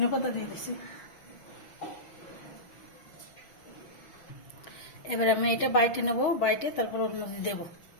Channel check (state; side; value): late; right; 6.3 ms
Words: পাতা দিয়ে দিছি। এবার আমি এটা বাইটে নেবো, বাইটে তারপর ওর মধ্যে দেবো।